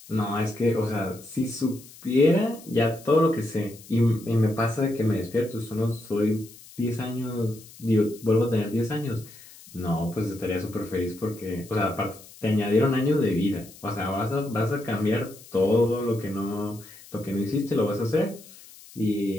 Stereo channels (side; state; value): left; noise; hiss, 20 dB below the sound